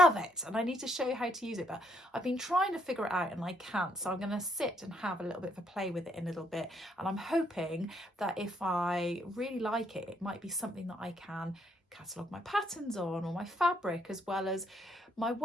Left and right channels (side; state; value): both; normal; correlation 0.72